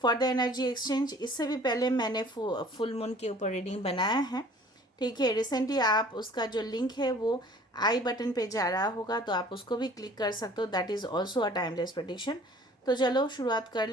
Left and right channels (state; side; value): normal; both; correlation 0.51